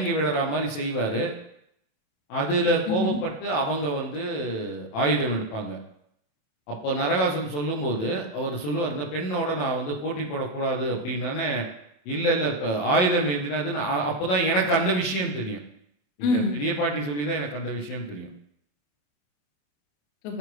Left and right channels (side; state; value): right; late; 27 ms